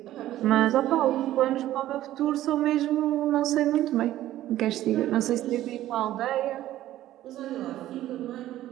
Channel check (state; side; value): quieter; left; 13.9 dB